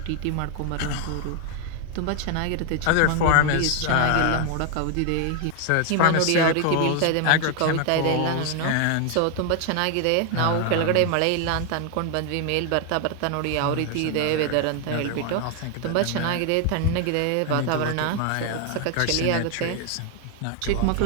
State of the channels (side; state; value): both; different; correlation 0.00